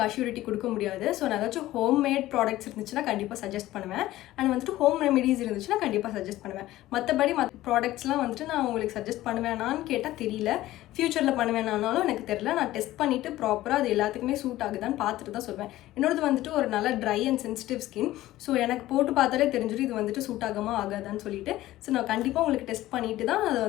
அஷ்யூரிட்டி கொடுக்க முடியாது. ஸோ நான் ஏதாச்சும் ஹோம்மேட் ப்ராடக்ட்ஸ் இருந்துச்சுன்னா கண்டிப்பாக சஜஸ்ட் பண்ணுவேன். அண்ட் வந்துட்டு ஹோம் ரெமெடிஸ் இருந்துச்சுன்னா கண்டிப்பாக சஜஸ்ட் பண்ணுவேன். மற்ற ப்ராடக்ட்ஸ்லாம் வந்துட்டு நான் உங்களுக்கு சஜஸ்ட் பண்ணுவேனான்னு கேட்டால் தெரியல. ஃப்யூச்சரில் பண்ணுவேனானாலும் எனக்கு தெரியல. நான் டெஸ்ட் பண்ணிவிட்டு ப்ராப்பராக அது எல்லாத்துக்குமே சூட் ஆகுதான்னு பார்த்துட்டு தான் சொல்வேன். என்னோடது வந்துட்டு ஒரு நல்ல try and sensitive skin. So எனக்கு போட்டு பார்த்தாலே தெரிஞ்சிடும் இது வந்துட்டு சூட் ஆகாமல் ஆகாதான்னு சொல்லிட்டு. ஸோ நான் கண்டிப்பாக உங்களுக்கு டெஸ்ட் பண்ணிவிட்டு தான் அதை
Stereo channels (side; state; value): right; quieter; 15.7 dB